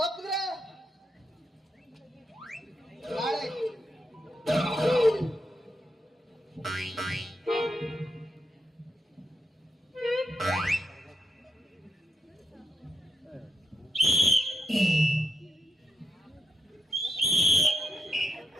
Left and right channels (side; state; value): both; normal; correlation 0.83